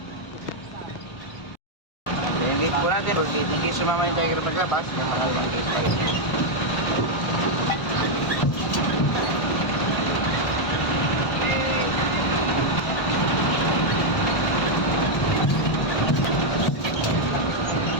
Yung gate po natin, for gate, in case sumama yung tiger paglabas, natakal yung gate pa rin.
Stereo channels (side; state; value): right; late; 1.4 ms